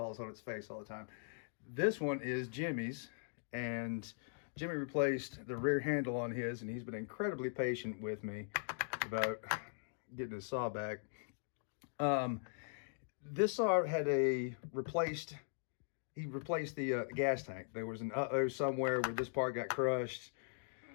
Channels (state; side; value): silent; right; digital silence